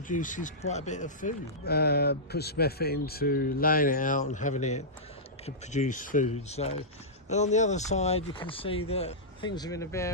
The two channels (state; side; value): normal; both; correlation -0.14